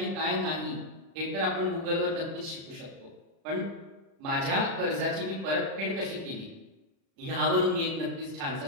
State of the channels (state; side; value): late; left; 36 ms